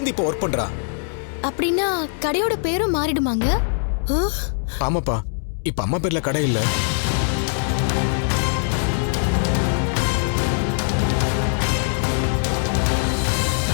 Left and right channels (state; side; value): silent; right; 64 dB below the other